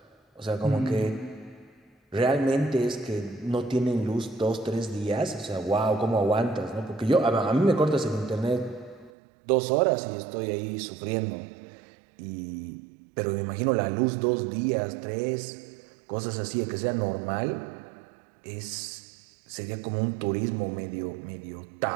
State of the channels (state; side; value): drops out; left; at 9.1 s